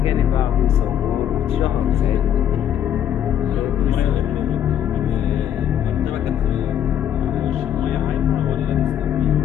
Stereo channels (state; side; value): quieter; right; 10.0 dB